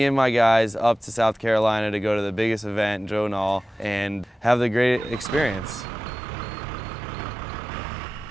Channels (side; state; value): both; normal; correlation 0.95